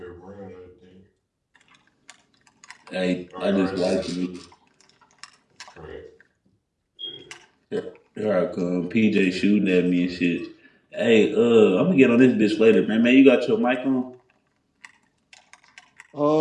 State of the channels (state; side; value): identical; both; correlation 1.00